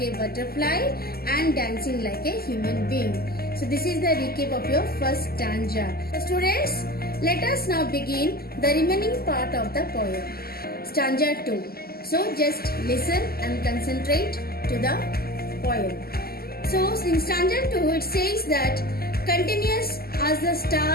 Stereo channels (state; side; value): late; right; 0.45 ms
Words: a butterfly and dancing like a human being. So this is the recap of your first stanza. So students, let us now begin the remaining part of the poem. Stanza 2. So just listen and concentrate to the poem. So in stanza 2 it says that continuous as the